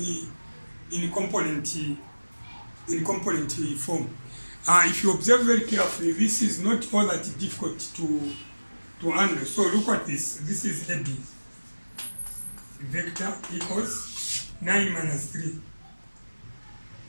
in component form. If you observe very carefully, this is not all that difficult to handle. So look at this. This is AB. Vector equals 9 minus 3.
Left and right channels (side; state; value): both; inverted; correlation -1.00